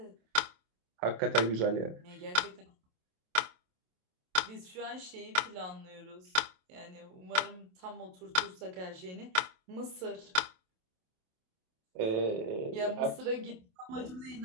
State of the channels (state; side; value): late; left; 27 ms